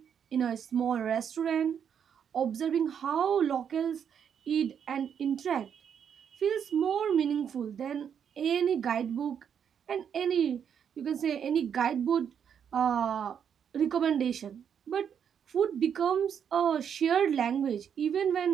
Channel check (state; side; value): quieter; left; 8.0 dB